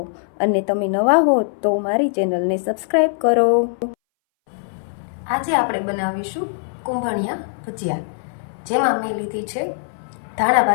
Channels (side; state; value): right; silent; 62 dB below the other